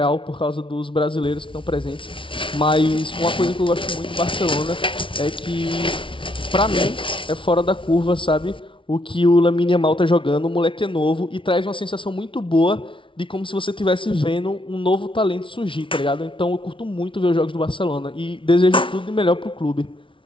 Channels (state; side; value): late; right; 0.25 ms